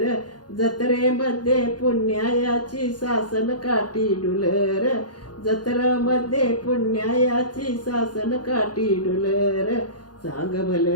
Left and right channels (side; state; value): right; late; 0.70 ms